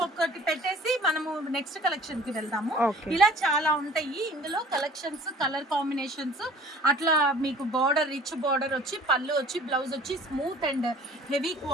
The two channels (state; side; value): normal; both; correlation 0.49